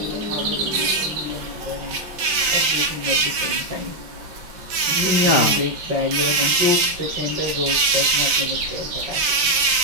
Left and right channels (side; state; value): left; late; 5.7 ms